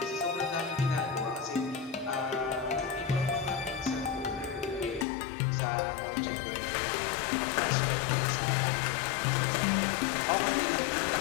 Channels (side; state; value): right; drops out; at 5.1 s